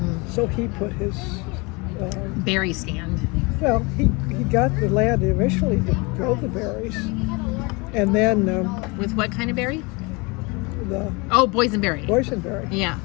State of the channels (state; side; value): quieter; right; 27.8 dB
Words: So he put his... berry stand. Well, he got the land initially to grow the berries. And then... With what kind of berry? The boysenberry. Boysenberry. Yeah.